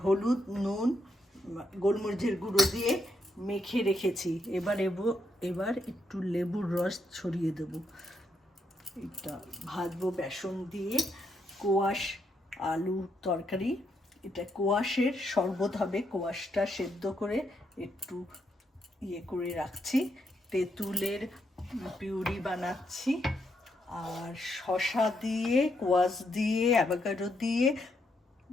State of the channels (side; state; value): both; normal; correlation 0.78